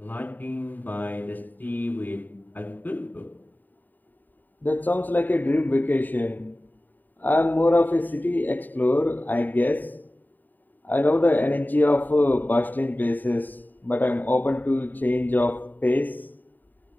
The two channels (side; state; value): right; late; 0.088 ms